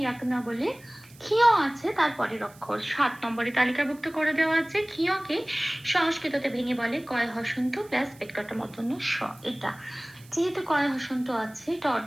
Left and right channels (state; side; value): noise; right; hiss, 25 dB below the sound